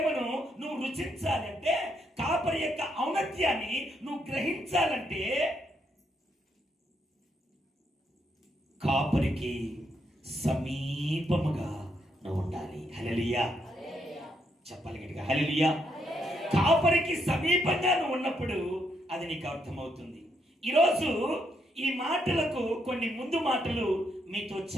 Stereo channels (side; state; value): both; normal; correlation 0.76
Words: నువ్వు రుచించాలంటే, కాపరి యొక్క ఔన్నత్యాన్ని నువ్వు గ్రహించాలంటే కాపరికి సమీపముగా నువ్వు ఉండాలి. హల్లెలూయా. చెప్పాలి గట్టిగా, హల్లెలూయా. కాపరికి సమీపంగా నువ్వు ఉన్నప్పుడు అది నీకు అర్థమవుతుంది. ఈరోజు ఈ మాటలకు కొన్ని ముందు మాటలు మీతో